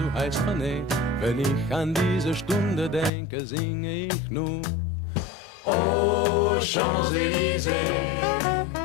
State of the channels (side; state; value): right; drops out; at 3.1 s